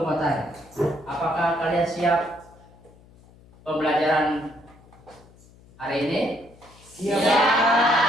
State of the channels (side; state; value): left; noise; hum, 25 dB below the sound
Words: mau tanya, apakah kalian siap pembelajaran hari ini? Siap.